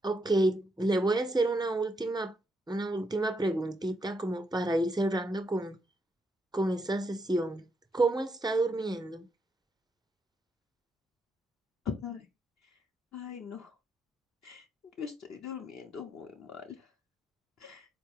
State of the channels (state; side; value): normal; both; correlation 0.79